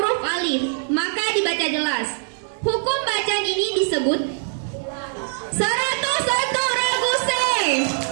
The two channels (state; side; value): silent; left; 64 dB below the other